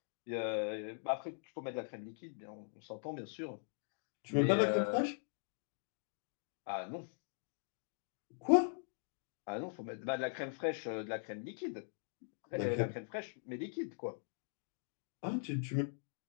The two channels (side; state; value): right; silent; digital silence